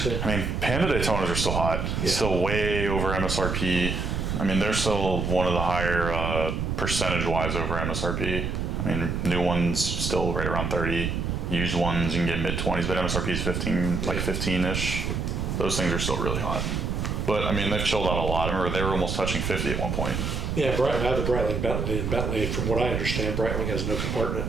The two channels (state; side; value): noise; right; rumble, 1 dB below the sound